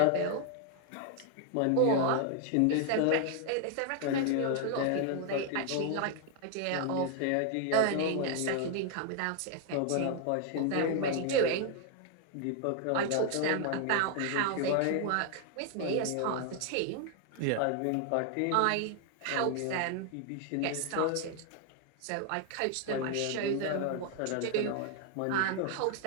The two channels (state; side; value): different; both; correlation 0.00